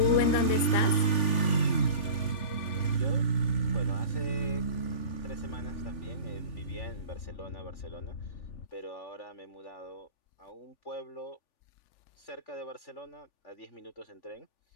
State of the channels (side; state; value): right; late; 3.4 ms